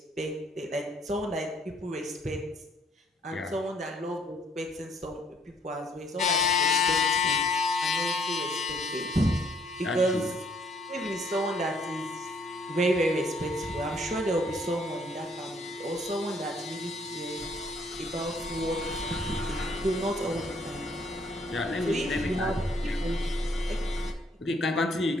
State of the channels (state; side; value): normal; both; correlation 0.64